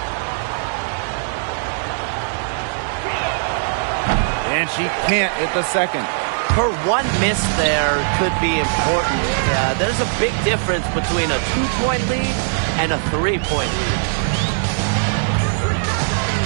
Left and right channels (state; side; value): silent; left; digital silence